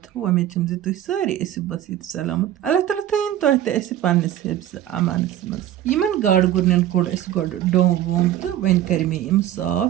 उम्मीद छम तुह सारी ऐसी बसीत सलामत। अल्लाह ताला थयन तुह ते ऐसी पन्निस हिफ्ज़ अमानस मज। यमन गाड़ गुरनन कोड़ ऐसी गोड़ डोम वोम तो वन कर मे इम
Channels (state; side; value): quieter; left; 12.2 dB